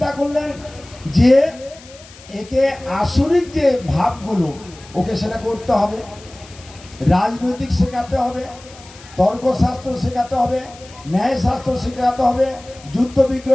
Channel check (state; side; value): noise; left; hiss, 21 dB below the sound